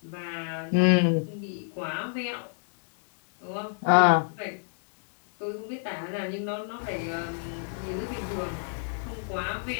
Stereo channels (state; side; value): silent; right; digital silence